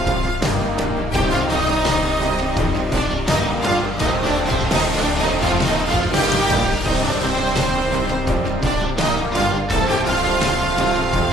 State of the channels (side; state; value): both; normal; correlation 0.67